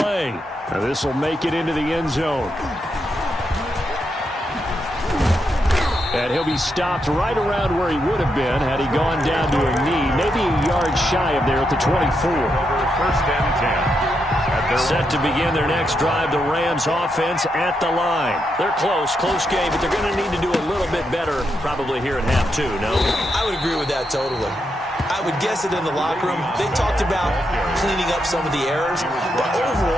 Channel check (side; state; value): both; normal; correlation 0.82